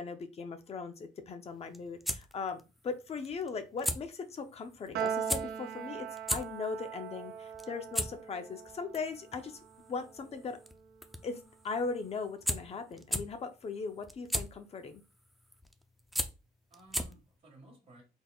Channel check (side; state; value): both; normal; correlation 0.58